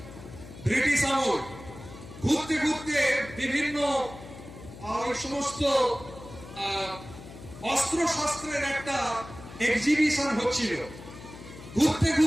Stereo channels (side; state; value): left; noise; hum, 15 dB below the sound